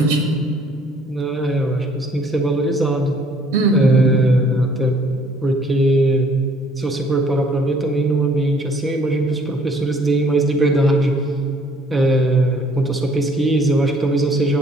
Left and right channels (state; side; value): normal; both; correlation 0.60